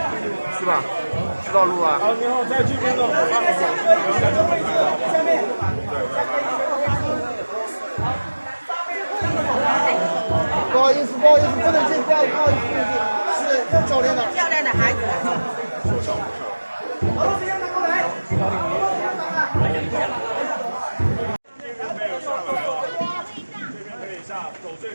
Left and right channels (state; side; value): inverted; both; correlation -1.00